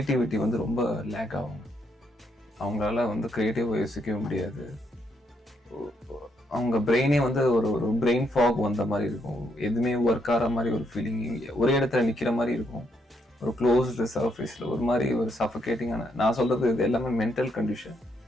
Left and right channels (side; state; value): both; normal; correlation 0.75